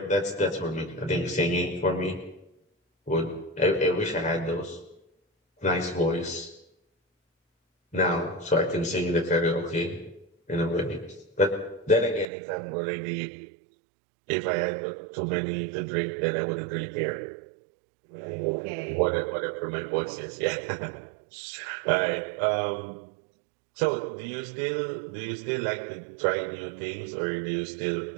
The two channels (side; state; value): left; drops out; at 12.2 s